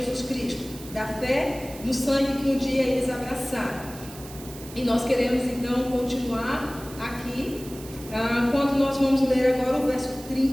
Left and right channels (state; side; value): noise; right; hiss, 17 dB below the sound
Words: Cristo, da fé no sangue que um dia eles abraçaram. E nós queremos então continuar aqui, quando nós vamos ler agora o verso